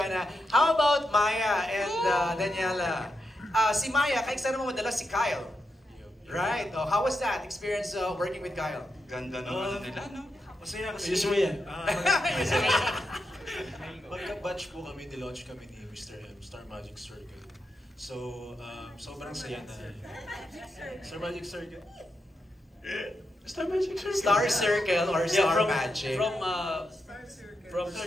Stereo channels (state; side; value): normal; both; correlation 0.85